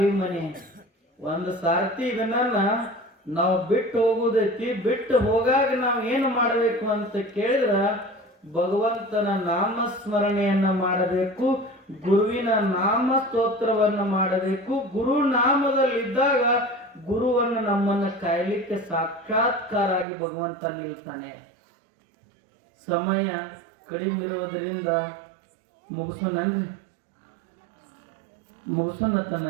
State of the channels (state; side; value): drops out; left; at 20.1 s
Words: ಮನೆ, ಒಂದು ಸಾರ್ತಿ ಇದನ್ನ ನಾವು ಬಿಟ್ಟು ಹೋಗುದೈತಿ. ಬಿಟ್ಟು ಹೋಗಾಗ ನಾವು ಏನು ಮಾಡಬೇಕು ಅಂತ ಕೇಳಿದ್ರ ಭಗವಂತನ ನಾಮಸ್ಮರಣೆಯನ್ನ ಮಾಡಬೇಕು, ಗುರುವಿನ ನಾಮ ಸ್ತೋತ್ರವನ್ನ ಮಾಡಬೇಕು. ಗುರು ನಾಮದಲ್ಲಿದ್ದಾಗ ಗುರುವನ್ನು ನಮ್ಮನ್ನ ಕಾಯಲಿಕ್ಕೆ ಸಾಕ್ಷಾತ್ಕಾರ ಆಗಿ ಭಗವಂತ ನಿಲ್ತಾನೆ. ಸಮಯ ಕಡಿಮೆ ಇರೋದ್ರಿಂದ ಮುಗಿಸೋಣನ್ರಿ.